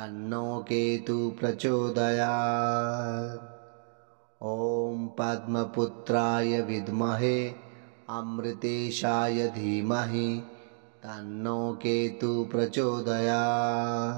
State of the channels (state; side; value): silent; left; digital silence